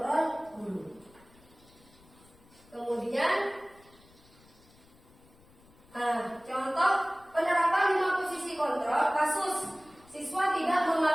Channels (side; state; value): left; noise; rumble, 27 dB below the sound